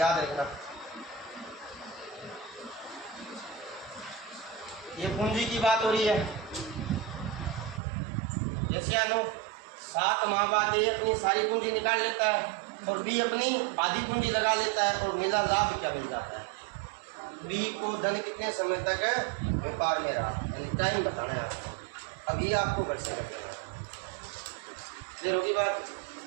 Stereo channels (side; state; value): left; drops out; at 7.8 s